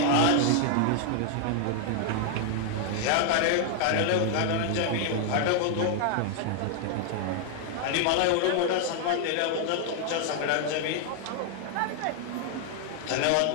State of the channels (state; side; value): different; both; correlation 0.00